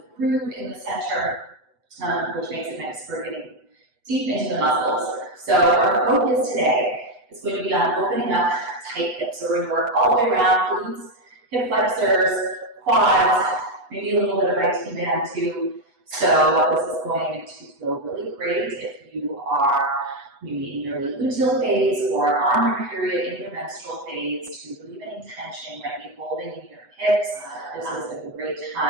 groove in the center, which makes it nice for getting deep into the muscles. So our focus today is going to be on opening up tight hips. So we're going to work all the way around, glutes, hip flexors, quads, maybe a little bit of IT band too. So this is going to feel really great if you are maybe in your Late-Luteal phase or on your period in your menstrual phase to relieve any tension you might be holding in your hips. This is a great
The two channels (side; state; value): left; late; 8.0 ms